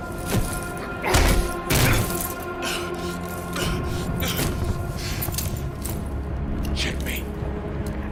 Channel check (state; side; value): identical; both; correlation 1.00